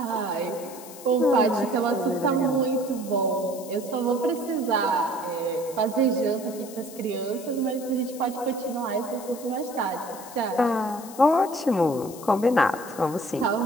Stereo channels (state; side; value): noise; left; hiss, 16 dB below the sound